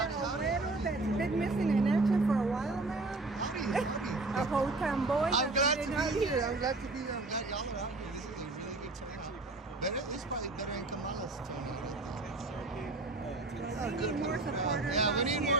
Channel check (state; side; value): quieter; left; 3.2 dB